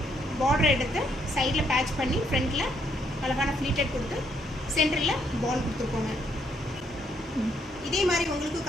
பார்டர் எடுத்து சைடில் பேட்ச் பண்ணி ஃப்ரண்ட்டில் அழகான ஃப்ளீட்டட் கொடுத்து சென்டரில் பால் கொடுத்துருக்கோங்க. இதே மாதிரி உங்களுக்கு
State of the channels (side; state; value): both; normal; correlation 0.72